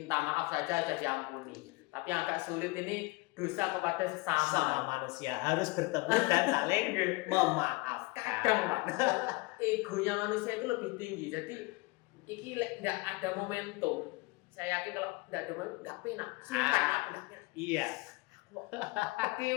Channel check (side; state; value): right; quieter; 24.5 dB